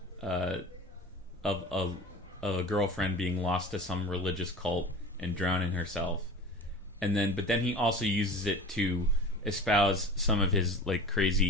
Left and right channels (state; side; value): normal; both; correlation 0.36